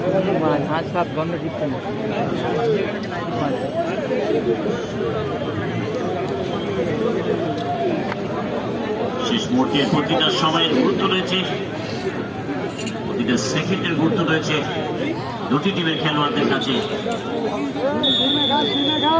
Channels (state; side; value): identical; both; correlation 1.00